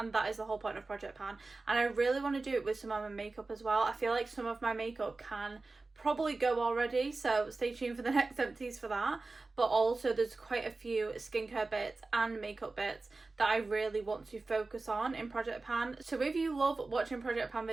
that is the whole point of Project Pan. And I really want to do it with some of my makeup as well. I feel like some of my makeup can probably go already, so stay tuned for the next empties for that. But also there's quite a few skincare bits and makeup bits that I really want to focus on in Project Pan. So if you love watching Project Pan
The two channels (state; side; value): quieter; left; 3.5 dB